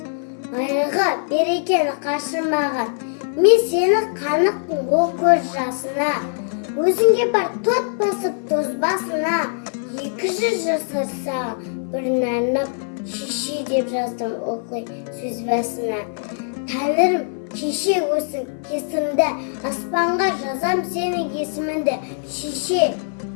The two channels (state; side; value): silent; right; 62 dB below the other